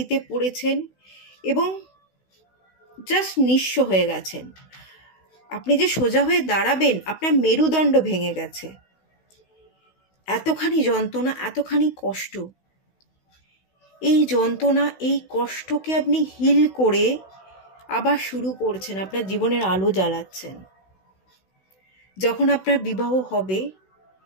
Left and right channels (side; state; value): right; late; 16 ms